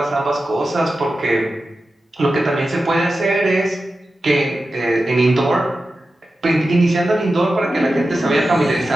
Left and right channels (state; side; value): normal; both; correlation 0.92